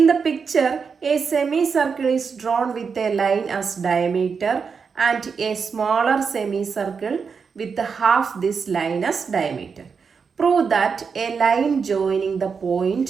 the picture a semi circle is drawn with a line as diameter and a smaller semi circle with half this line as diameter. Prove that a line joining the point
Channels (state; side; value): quieter; left; 5.7 dB